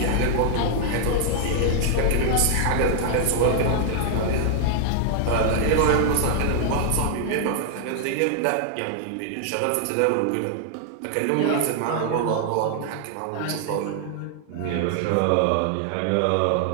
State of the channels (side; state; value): both; different; correlation 0.00